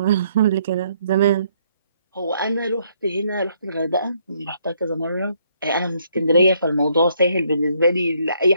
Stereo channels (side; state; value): both; inverted; correlation -0.69